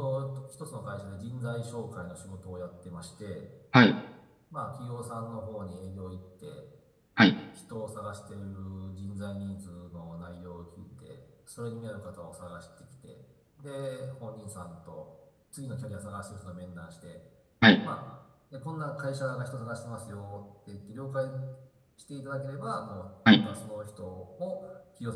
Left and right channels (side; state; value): both; identical; correlation 1.00